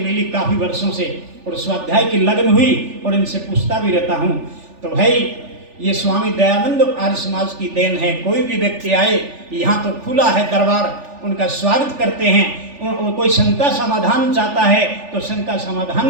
काफ़ी वर्षों से और स्वाध्याय की लगन हुई और इनसे पूछता भी रहता हूँ। तो भाई ये स्वामी दयानंद आर्य समाज की देन है। कोई भी व्यक्ति आए, यहाँ तो खुला है दरबार, उनका स्वागत करते हैं। कोई शंका समाधान चाहता है तो शंका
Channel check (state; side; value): late; left; 3.4 ms